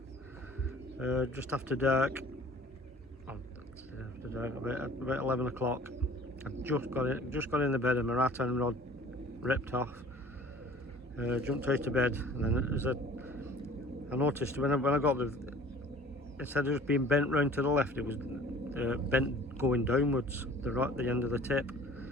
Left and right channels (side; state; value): both; normal; correlation 0.48